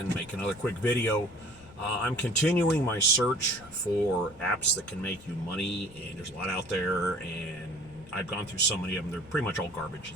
make another quick video. I'm continuing my search for apps that can make you money, and there's a lot out there, and I've gone through so many of them, they're pretty much all garbage.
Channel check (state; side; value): noise; left; rumble, 22 dB below the sound